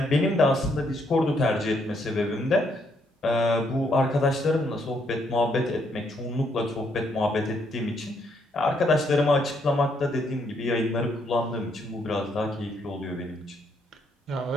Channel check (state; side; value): normal; both; correlation 0.73